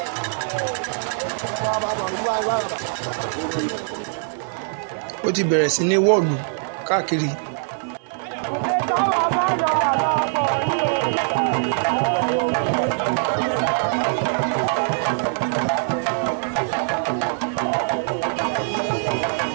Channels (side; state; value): left; silent; 64 dB below the other